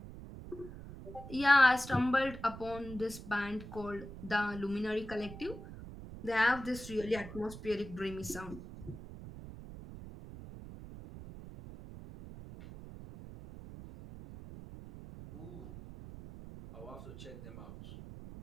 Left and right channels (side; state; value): right; noise; rumble, 13 dB below the sound